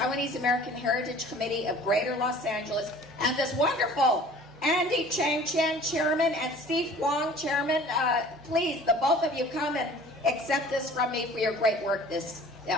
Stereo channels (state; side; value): normal; both; correlation 0.47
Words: American Heritage Committee of Greater Los Angeles and this wonderful Andy Chang Chen, Chairman, and Steve Huang, Chairman. Please, the both of you come and accept this from me for your great work